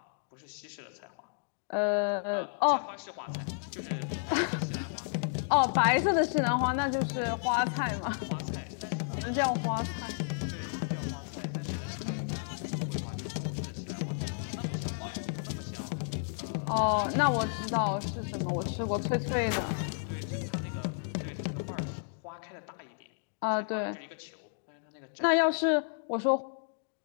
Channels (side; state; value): right; silent; digital silence